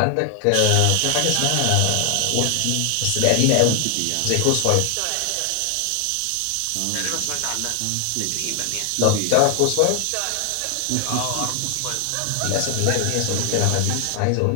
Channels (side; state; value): both; different; correlation 0.00